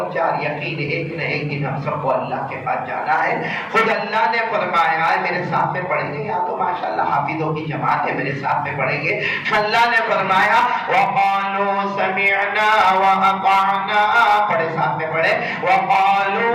4 یقین ایک نہ ایک دن ہم سب کو اللہ کے پاس جانا ہے. خود اللہ نے فرمایا ہے، میرے ساتھ میں پڑھیں گے، یا تو ماشاءاللہ حافظوں کی جماعت ہے، میرے ساتھ میں پڑھیں گے. اللہ نے فرمایا وَقَالُوا سَمِعْنَا وَأَطَعْنَا، پڑھے ساتھ میں پڑھے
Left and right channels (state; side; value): identical; both; correlation 1.00